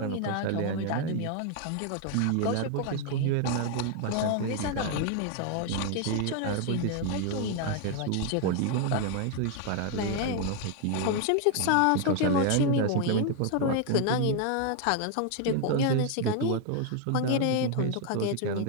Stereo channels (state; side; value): different; both; correlation 0.00